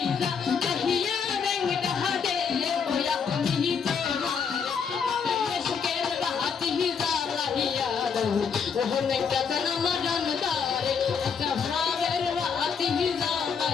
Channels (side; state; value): right; quieter; 6.3 dB